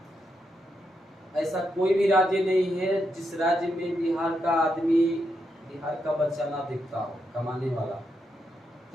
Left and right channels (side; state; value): both; normal; correlation 0.83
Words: ऐसा कोई भी राज्य नहीं है जिस राज्य में बिहार का आदमी, बिहार का बच्चा ना दिखता हो कमाने वाला।